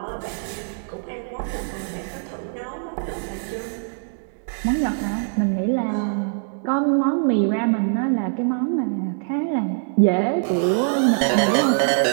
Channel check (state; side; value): silent; left; digital silence